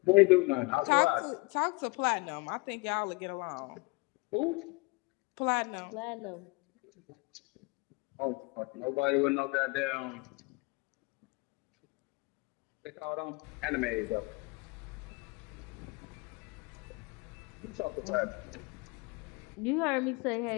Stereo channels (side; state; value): right; quieter; 26.5 dB